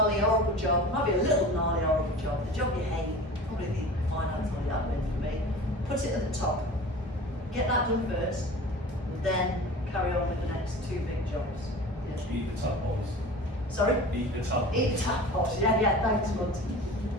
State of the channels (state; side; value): normal; both; correlation 0.38